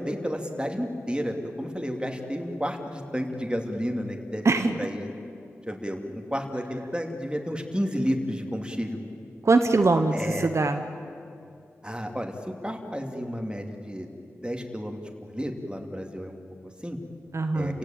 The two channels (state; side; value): normal; both; correlation 0.90